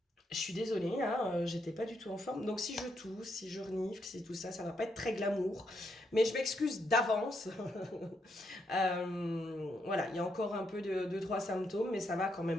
je suis désolée, hein, j'étais pas du tout en forme. Donc si je tousse, si je renifle, si tout ça, ça va pas être très glamour. Mais je m'excuse d'avance. Voilà, il y a encore un peu de trois symptômes, mais ça va quand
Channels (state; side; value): normal; both; correlation 0.78